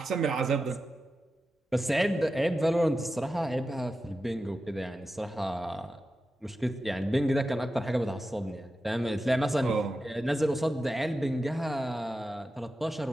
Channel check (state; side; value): normal; both; correlation 0.91